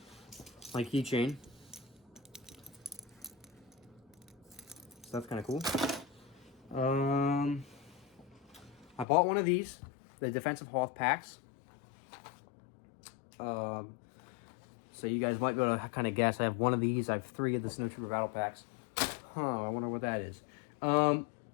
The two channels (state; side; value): drops out; right; at 9.1 s